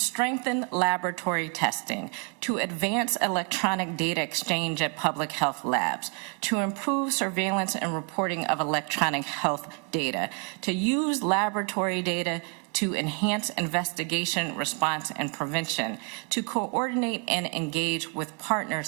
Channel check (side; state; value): left; quieter; 34.1 dB